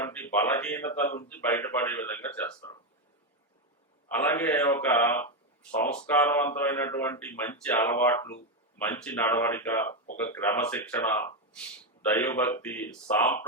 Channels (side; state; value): both; normal; correlation 0.07